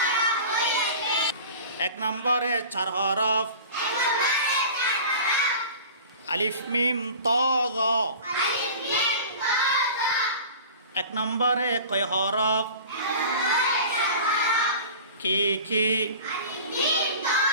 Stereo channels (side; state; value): both; inverted; correlation -0.39